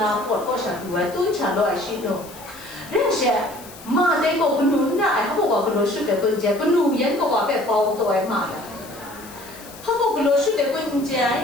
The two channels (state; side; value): noise; left; hiss, 18 dB below the sound